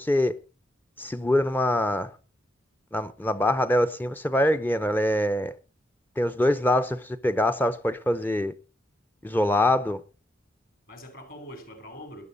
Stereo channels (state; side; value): normal; both; correlation 0.81